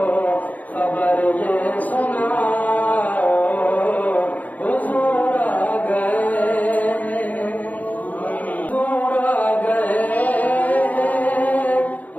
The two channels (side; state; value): right; late; 0.077 ms